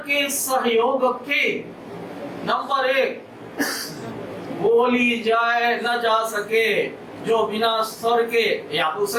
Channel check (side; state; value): both; identical; correlation 1.00